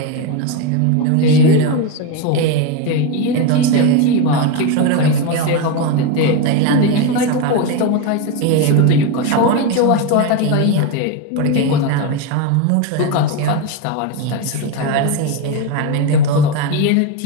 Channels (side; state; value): both; different; correlation 0.04